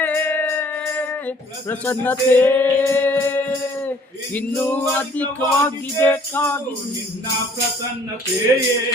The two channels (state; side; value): normal; both; correlation 0.57